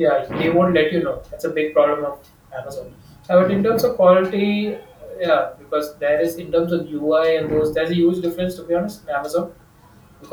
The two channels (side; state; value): both; identical; correlation 1.00